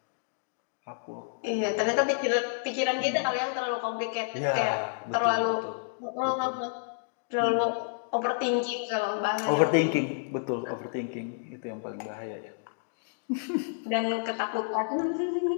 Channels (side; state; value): right; silent; digital silence